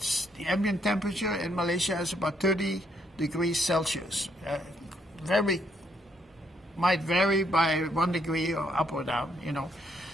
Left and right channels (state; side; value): normal; both; correlation 0.72